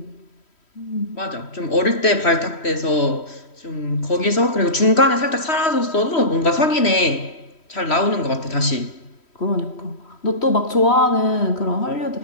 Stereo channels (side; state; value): right; late; 3.1 ms